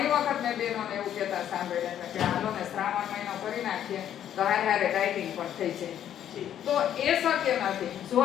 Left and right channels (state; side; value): quieter; right; 10.4 dB